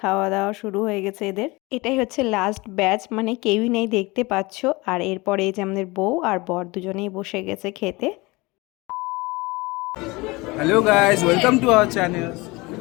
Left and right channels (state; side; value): quieter; right; 23.4 dB